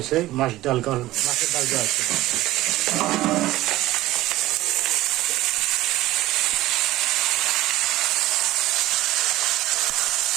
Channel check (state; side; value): quieter; left; 16.5 dB